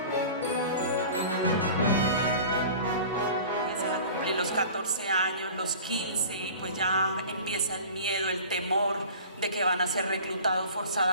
Los 14 años, los 15, y pues ya empieza el miedo, el temor de que van a ser reclutados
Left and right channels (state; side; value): inverted; both; correlation -0.41